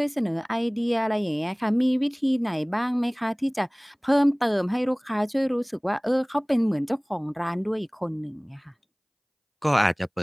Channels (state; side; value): identical; both; correlation 1.00